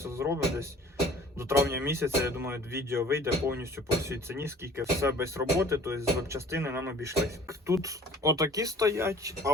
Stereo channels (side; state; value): both; normal; correlation 0.49